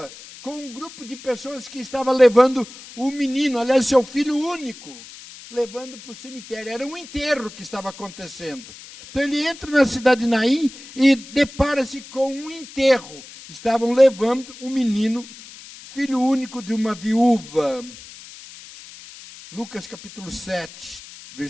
com um grupo de pessoas que estava levando o menino, aliás, seu filho único. levando para o cemitério. Era um enterro que estava acontecendo. Então ele entra na cidade de Naim e depara-se com um enterro. Estavam levando um menino, filho único de uma viúva. Lucas capítulo 7,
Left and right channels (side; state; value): left; noise; hiss, 17 dB below the sound